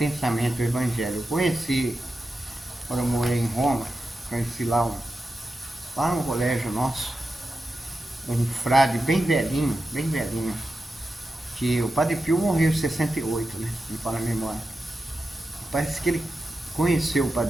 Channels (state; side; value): normal; both; correlation 0.90